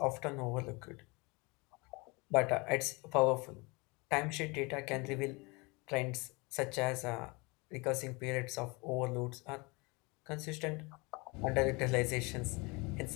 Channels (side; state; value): right; quieter; 27.3 dB